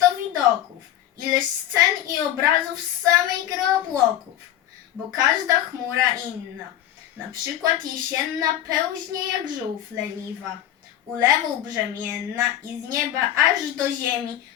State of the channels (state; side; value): quieter; right; 12.3 dB